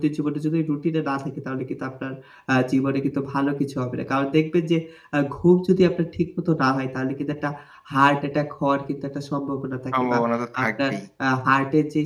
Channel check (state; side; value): identical; both; correlation 1.00